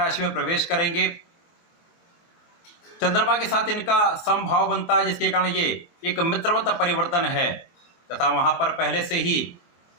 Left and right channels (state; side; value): late; right; 24 ms